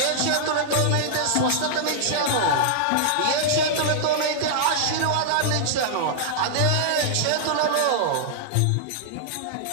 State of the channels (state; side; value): different; both; correlation -0.01